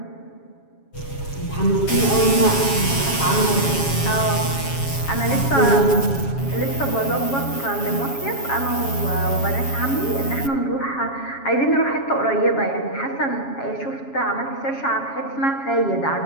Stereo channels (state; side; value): late; right; 7.3 ms